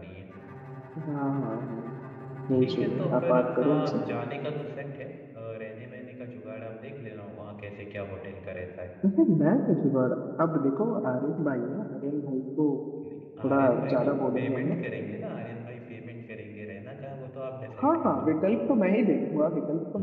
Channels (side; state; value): both; identical; correlation 1.00